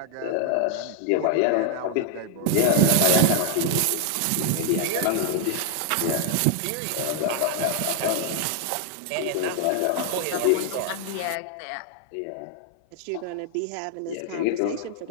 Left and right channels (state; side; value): different; both; correlation 0.00